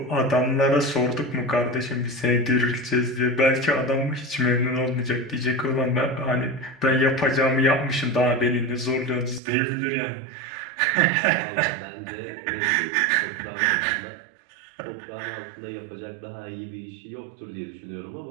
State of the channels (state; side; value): drops out; left; at 9.4 s